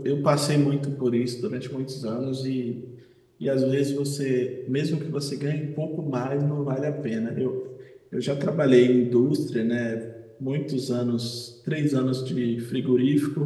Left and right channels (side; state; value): both; identical; correlation 1.00